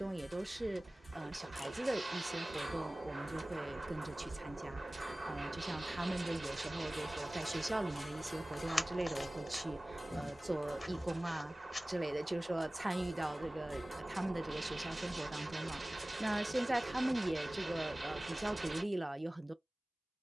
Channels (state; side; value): normal; both; correlation 0.98